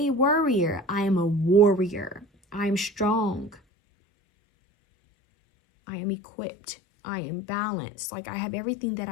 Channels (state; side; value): drops out; right; at 3.6 s